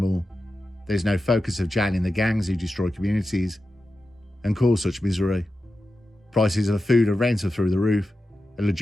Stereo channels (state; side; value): normal; both; correlation 0.92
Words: There's no focus of jailing the gangs who destroy communities and cause such misery. Prices of food and rent are through the roof, and